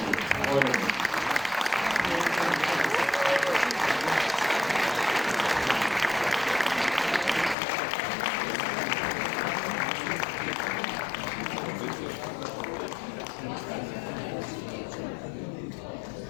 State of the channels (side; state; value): right; drops out; at 7.6 s